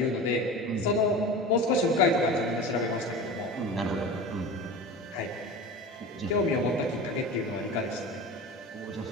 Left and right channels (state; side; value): normal; both; correlation 0.32